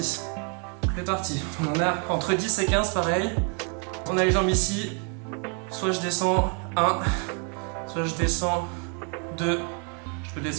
C'est parti. On en a entre 10 et 15, pareil. On a les jambes ici. Soit je descends 1, soit je descends 2. Je peux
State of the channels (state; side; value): quieter; left; 38.1 dB